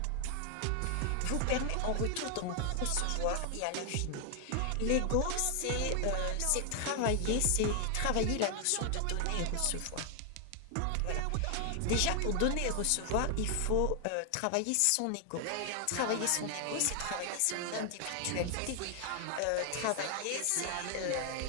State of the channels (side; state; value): both; different; correlation 0.00